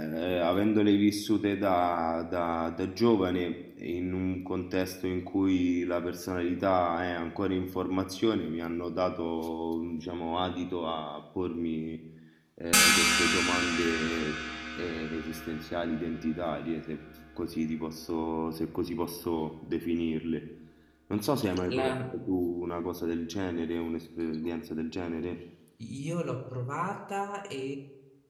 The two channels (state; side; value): identical; both; correlation 1.00